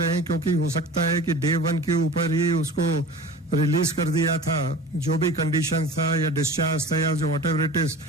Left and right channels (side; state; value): both; normal; correlation 0.38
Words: हैं, क्योंकि हो सकता है कि डे 1 के ऊपर ही उसको रिलीज कर दिया था, जो भी कंडीशन था या डिस्चार्ज था या जो वट एवर इट इज,